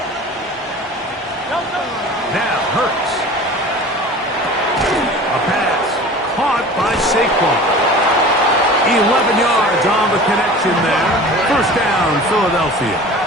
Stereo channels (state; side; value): normal; both; correlation 0.40